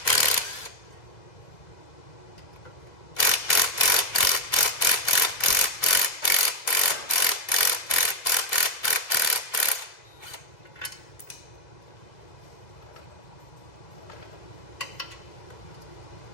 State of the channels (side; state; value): right; late; 2.0 ms